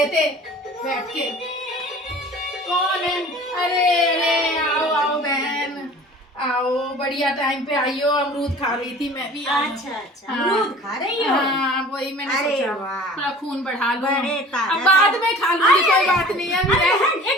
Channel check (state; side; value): normal; both; correlation 0.44